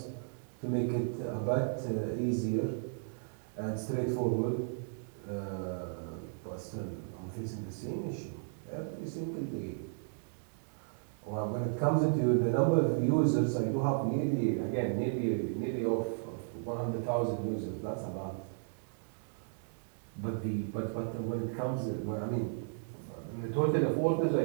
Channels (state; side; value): silent; left; digital silence